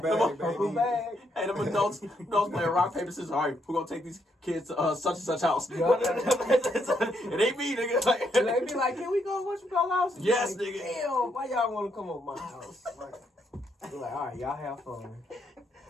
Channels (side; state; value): both; normal; correlation 0.76